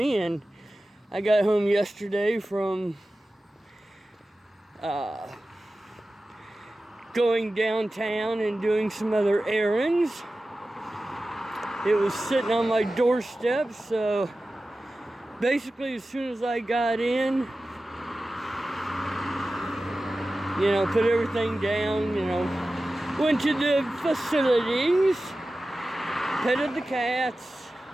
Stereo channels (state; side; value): normal; both; correlation 0.95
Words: And I got home yesterday from going downtown and doing some other errands. It was sitting on my doorstep, so basically as soon as I got in, put everything down, went to the facilities, petted the cats.